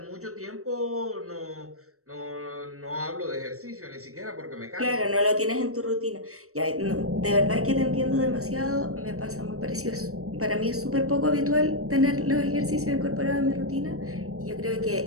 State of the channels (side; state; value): left; late; 0.64 ms